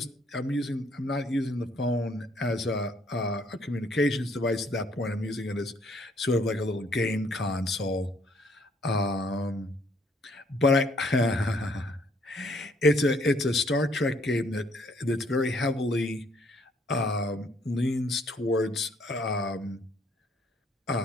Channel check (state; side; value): normal; both; correlation 0.65